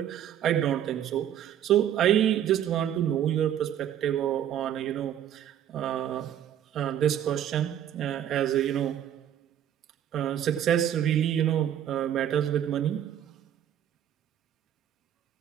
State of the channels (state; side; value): quieter; left; 10.5 dB